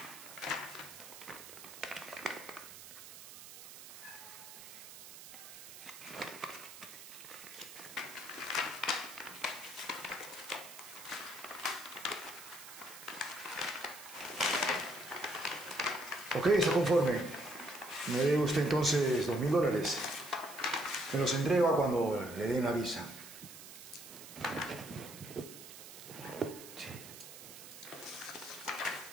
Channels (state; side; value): noise; right; hiss, 14 dB below the sound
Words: Ok, está conforme. Me debe usted entonces $2.000. Me los entrega cuando le den la visa. Sí.